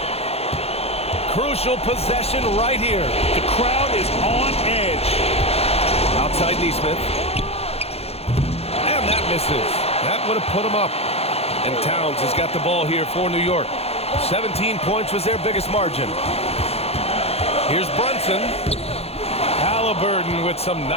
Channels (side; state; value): right; late; 0.29 ms